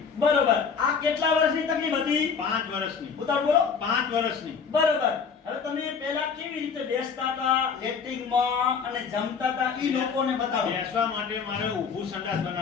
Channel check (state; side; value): quieter; right; 6.0 dB